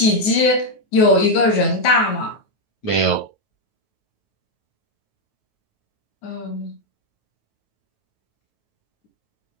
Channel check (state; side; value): late; right; 9.2 ms